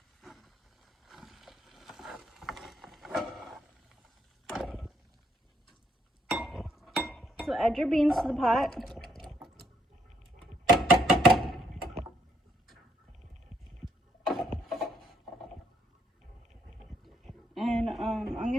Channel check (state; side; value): normal; both; correlation 0.72